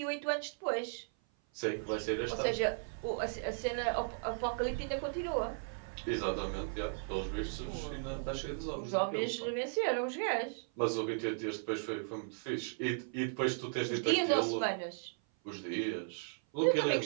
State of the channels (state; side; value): silent; left; 54 dB below the other